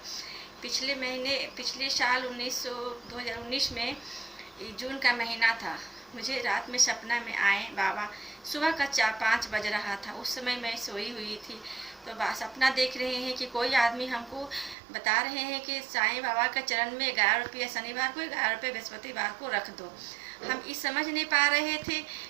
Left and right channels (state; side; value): drops out; left; at 14.8 s